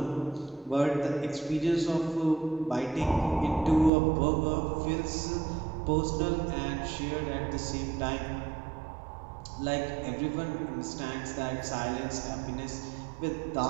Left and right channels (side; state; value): left; drops out; at 3.9 s